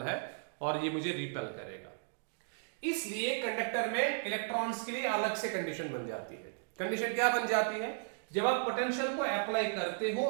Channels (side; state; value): left; silent; digital silence